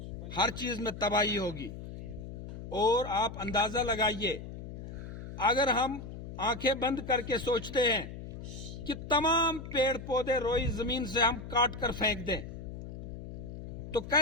ہر چیز میں تباہی ہوگی۔ اور آپ اندازہ لگائیے، اگر ہم آنکھیں بند کر کے سوچتے ہیں کہ تمام پیڑ پودے روئی زمین سے ہم کاٹ کر پھینک دیں تو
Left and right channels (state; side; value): noise; left; hum, 10 dB below the sound